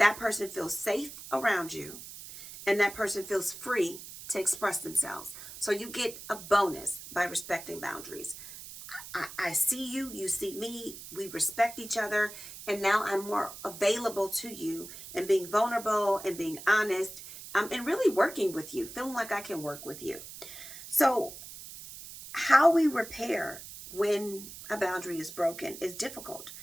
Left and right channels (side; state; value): right; noise; hiss, 13 dB below the sound